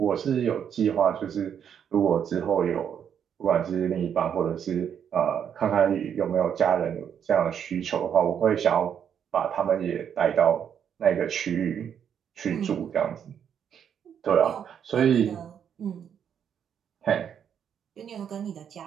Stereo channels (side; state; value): left; quieter; 8.4 dB